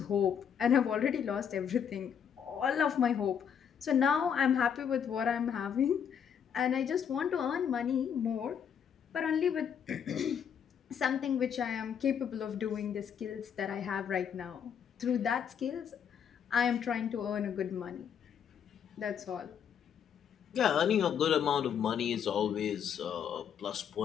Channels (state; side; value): quieter; right; 8.0 dB